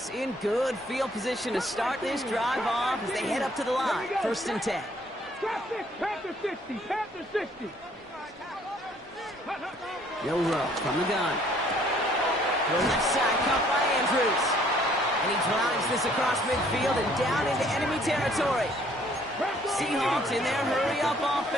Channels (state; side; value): normal; both; correlation 0.61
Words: in good field position to start this drive off as they head up to the line. First and 10. Panther 60, Panther 60. Milrow from the gun. The left side caught by Andrews. And he drives this across midfield and down into enemy territory. Seahawks in their hurry-up